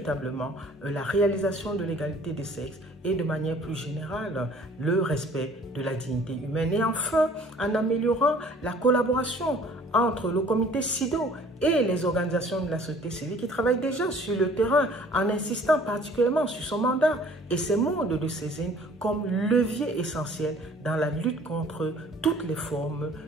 la réalisation de l'égalité des sexes et de manière plus générale le respect de la dignité humaine. Et enfin, en améliorant la collaboration entre le comité SIDO et les organisations de la société civile qui travaillent déjà sur le terrain en insistant particulièrement sur son mandat et ses modes de saisine comme levier essentiel dans la lutte contre toutes les formes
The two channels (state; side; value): normal; both; correlation 0.54